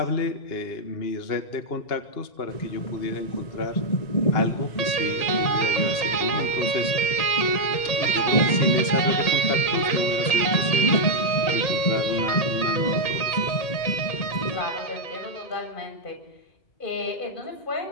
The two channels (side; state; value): right; late; 1.8 ms